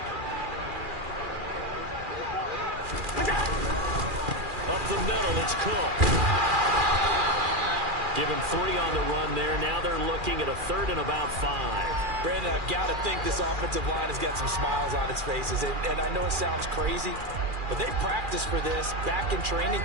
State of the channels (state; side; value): late; left; 2.4 ms